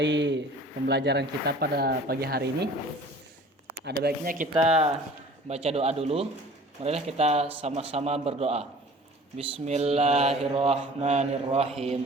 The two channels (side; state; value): both; normal; correlation 0.47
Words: pembelajaran kita pada pagi hari ini, ada baiknya kita baca doa dulu. Marilah kita sama-sama berdoa.